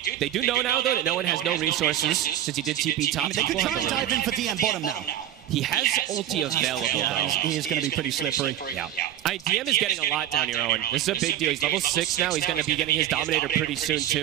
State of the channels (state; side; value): quieter; left; 11.4 dB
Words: do know now, though, that No One has no resources since he did TP top. They could try and dive in for DM bottom now. He has ulti available, though. He is going to be pretty slippery. Yeah. DM is getting a lot down here, Owen. This is a big deal. He's level 6 now. He's going to be getting his Dominator pretty soon,